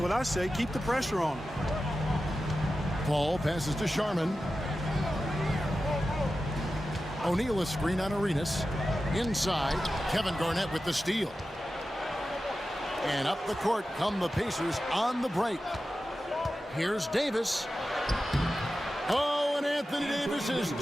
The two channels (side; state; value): both; normal; correlation 0.93